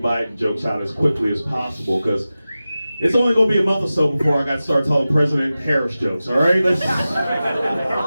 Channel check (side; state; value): both; inverted; correlation -0.95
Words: jokes out as quickly as possible, because it's only going to be a month or so before I got to start telling President Harris jokes, all right?